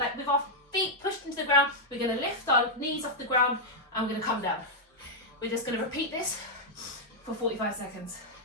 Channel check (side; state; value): both; normal; correlation -0.03